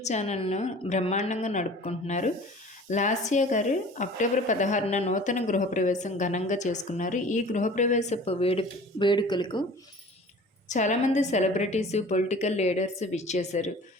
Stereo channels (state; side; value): normal; both; correlation 0.44